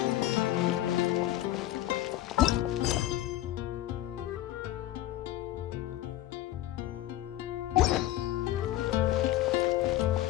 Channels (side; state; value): right; quieter; 14.4 dB